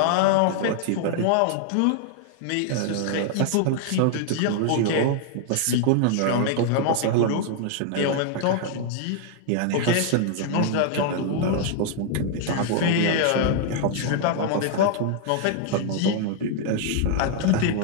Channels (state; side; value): different; both; correlation 0.00